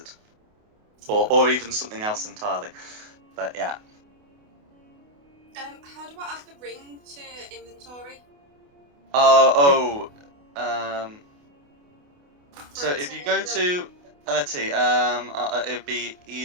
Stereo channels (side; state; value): left; late; 28 ms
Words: Or even something else entirely. But yeah. How do I add the ring to inventory? So For it if to you go build- to let's see, it'd be